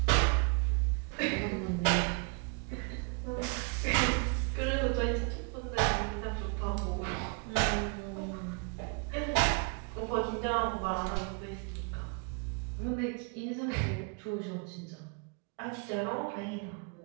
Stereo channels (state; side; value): quieter; left; 35.1 dB